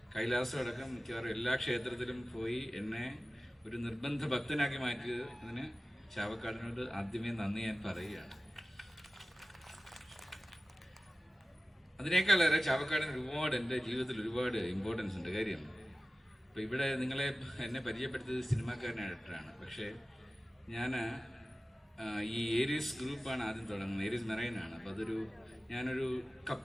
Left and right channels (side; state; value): both; normal; correlation 0.95